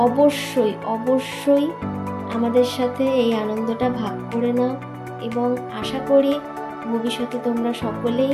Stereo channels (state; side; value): identical; both; correlation 1.00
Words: অবশ্যই অবশ্যই আমাদের সাথে এই আনন্দটা ভাগ করে নাও এবং আশা করি ভবিষ্যতে তোমরা